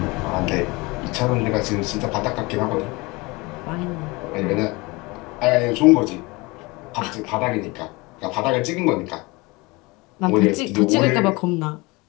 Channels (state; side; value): quieter; right; 24.5 dB